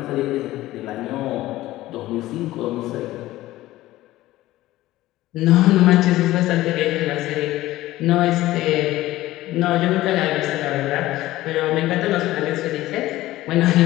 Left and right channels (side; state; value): right; quieter; 16.3 dB